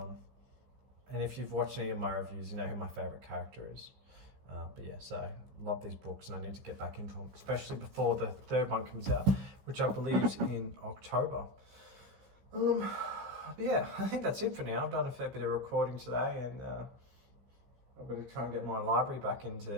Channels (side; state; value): left; late; 15 ms